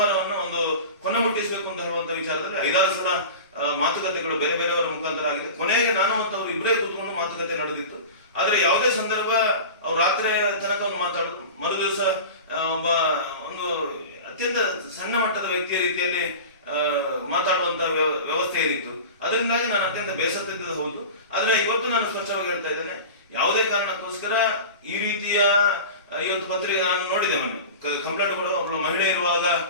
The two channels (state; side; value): inverted; both; correlation -0.33